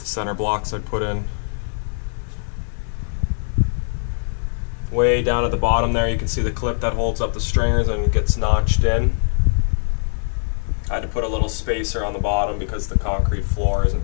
center blocks I put in. Way down at the bottom there you can see the clip that holds up the stringers and it gets notched in. I had to put a little spacer on the bottom because the concrete floor isn't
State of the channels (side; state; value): right; silent; digital silence